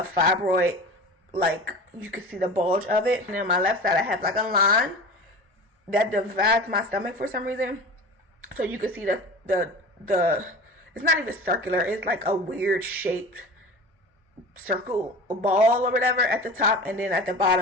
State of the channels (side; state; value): both; normal; correlation 0.35